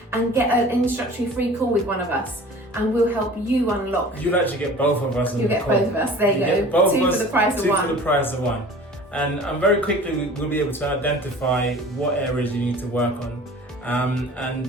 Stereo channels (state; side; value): normal; both; correlation 0.44